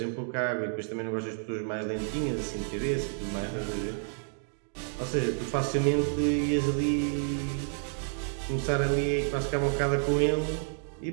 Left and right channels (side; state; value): left; silent; digital silence